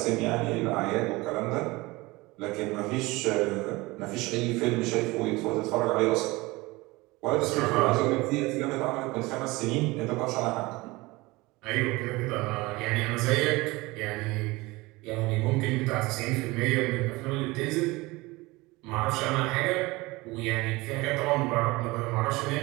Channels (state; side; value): quieter; left; 22.0 dB